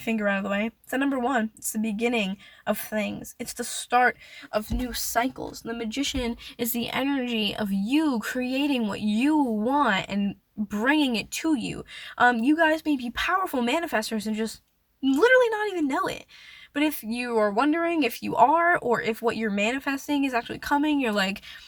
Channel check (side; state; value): both; identical; correlation 1.00